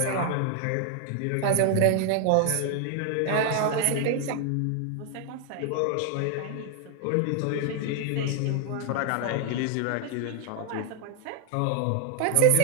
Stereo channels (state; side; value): different; both; correlation 0.00